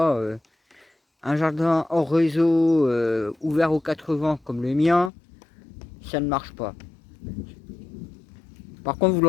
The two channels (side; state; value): right; drops out; at 5.1 s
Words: un jardin hors réseau ouvert aux 4 vents comme le mien, ça ne marche pas. Par contre, vous